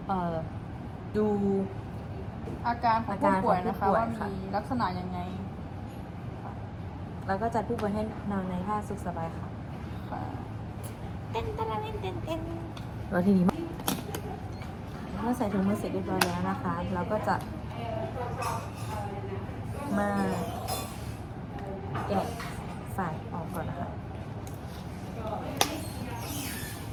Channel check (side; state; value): both; identical; correlation 1.00